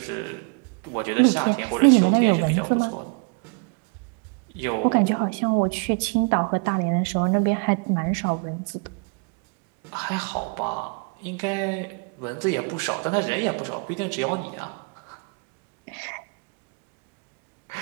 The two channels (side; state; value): left; quieter; 34.9 dB